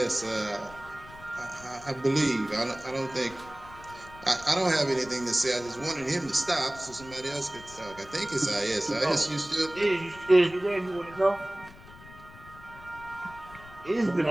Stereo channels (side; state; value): left; noise; rumble, 19 dB below the sound